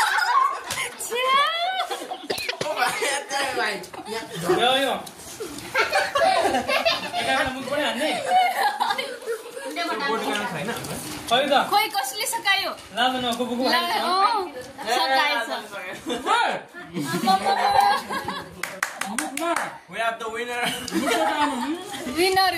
खोइ कसले सकायो We have the winner. Winner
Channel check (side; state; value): both; identical; correlation 1.00